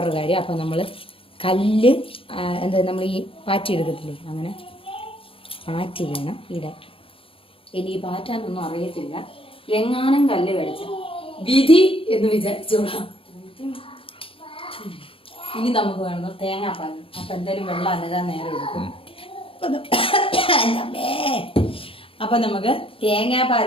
കാര്യം. അപ്പം നമ്മൾ കല്ല് എന്താ നമ്മൾ ഈ പാറ്റി എടുക്കത്തില്ലേ, അങ്ങനെ പാറ്റി വേണം ഇടാൻ. ഇനി പാറ്റാനൊന്നും അറിയത്തില്ല, എങ്ങാനും കല്ല് കഴിച്ച വിധി എന്ന് വിചാരിച്ചോളാം. ഇനി നമുക്ക് വേണം തേങ്ങാപ്പാൽ. അപ്പം എന്തായാലും വെള്ളം അനതാൻ നേരം എടുക്കും. അപ്പം നമുക്ക് തേങ്ങാപ്പാൽ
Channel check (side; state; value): right; late; 0.26 ms